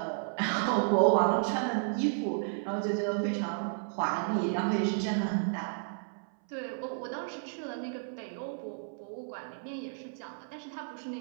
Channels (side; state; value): left; silent; 56 dB below the other